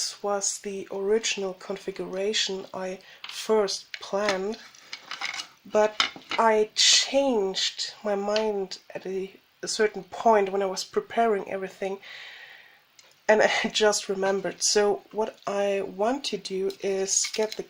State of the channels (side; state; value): both; identical; correlation 1.00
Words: was the original configuration I first planned, but I changed my mind at a certain point when I was preparing everything, and I just remembered. So what I want to do is get the